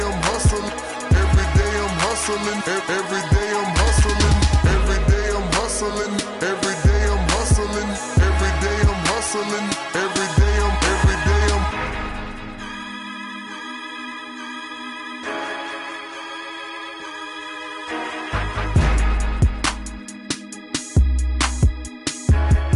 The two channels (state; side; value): identical; both; correlation 1.00